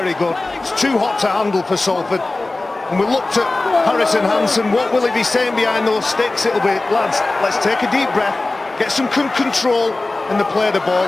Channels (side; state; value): right; quieter; 3.1 dB